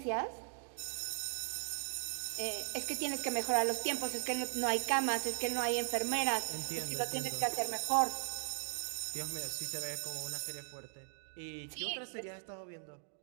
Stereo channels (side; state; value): left; silent; digital silence